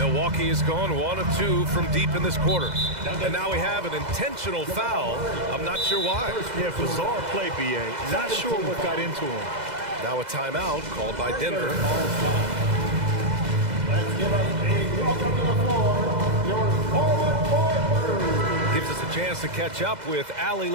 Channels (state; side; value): late; left; 2.0 ms